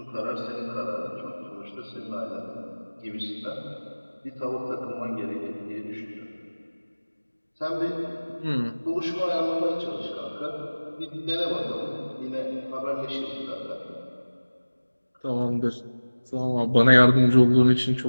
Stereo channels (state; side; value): inverted; both; correlation -1.00